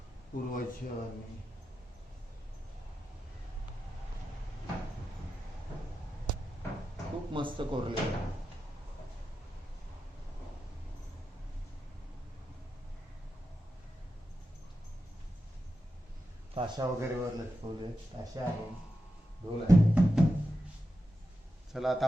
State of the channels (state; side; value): normal; both; correlation 0.90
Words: पूर्वजांनी. खूप मस्त कोरलेलं आहे. ताशा वगैरे वर लटकवले, ताशा आहे, ढोल आहे. चला आता